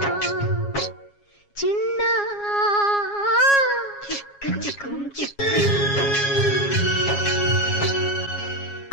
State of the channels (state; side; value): late; right; 7.3 ms